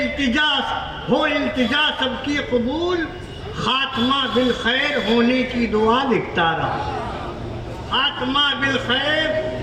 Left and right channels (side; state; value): both; identical; correlation 1.00